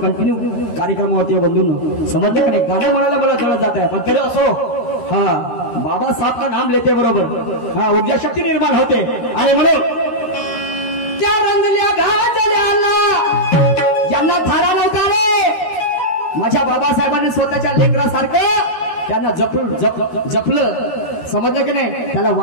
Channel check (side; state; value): right; late; 13 ms